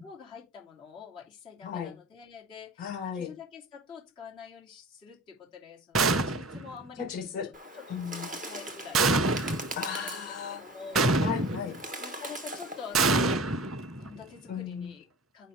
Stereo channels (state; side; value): normal; both; correlation 0.38